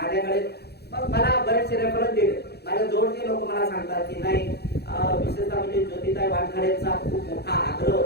मग मला बरेचसे रेफरन्स दिले, माझ्या जवळचे लोक मला सांगतात की नाही विशेषतः म्हणजे ज्योतिताई वानखडेंचा खूप मोठा आग्रह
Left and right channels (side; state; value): right; late; 0.48 ms